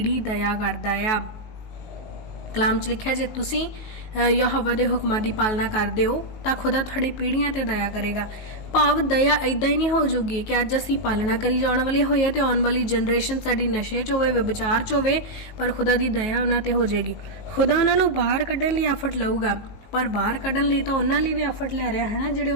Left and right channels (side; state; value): right; late; 19 ms